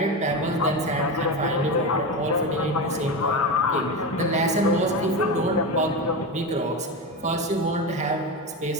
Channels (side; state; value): both; normal; correlation 0.19